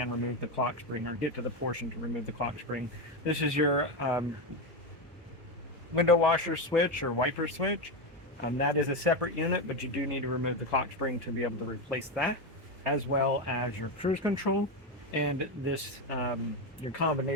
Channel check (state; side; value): normal; both; correlation 0.12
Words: remove the clock spring, or get to the portion to remove the clock spring. This is your window washer switch or wiper switch. That is a separate unit, but you do need to remove the clock spring to be able to replace that, as well as your cruise control and this your